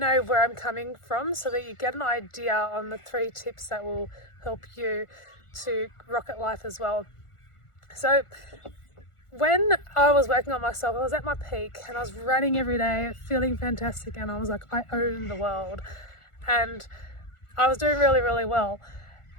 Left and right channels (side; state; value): right; late; 1.4 ms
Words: where I'm coming from so that you get an idea on the 3 tips that will help you to rock at life as well. So when I was working on myself, I was at my peak and I was running every day, feeling fantastic, and I was like, I own the world. And I was doing really, really well.